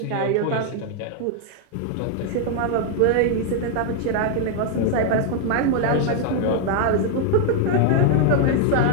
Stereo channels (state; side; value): different; both; correlation 0.00